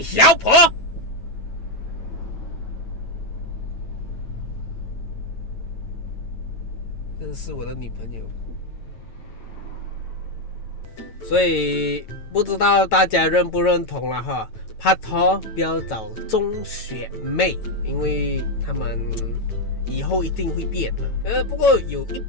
小婆！这是我的女朋友。所以不知道大家认不认同了哈？拍拖不要找中学妹，因为他们以后一定会变的。不过有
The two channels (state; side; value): late; right; 9.1 ms